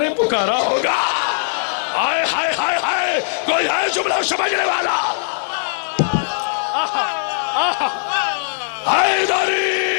पुकारा होगा। हाय हाय हाय हाय, कोई है जुमला समझने वाला?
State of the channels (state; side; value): silent; right; digital silence